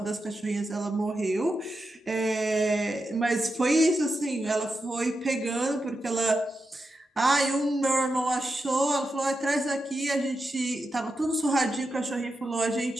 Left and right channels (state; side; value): normal; both; correlation 0.88